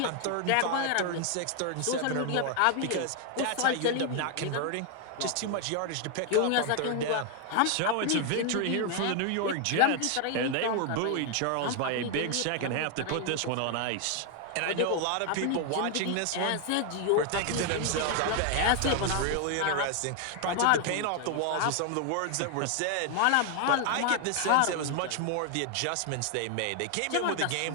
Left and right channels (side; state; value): both; different; correlation 0.00